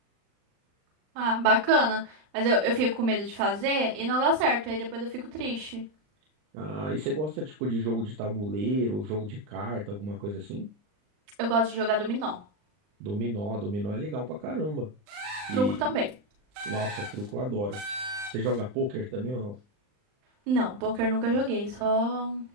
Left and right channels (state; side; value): late; left; 39 ms